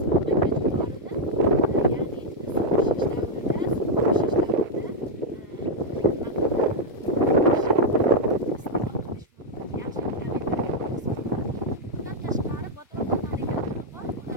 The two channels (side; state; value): both; normal; correlation -0.01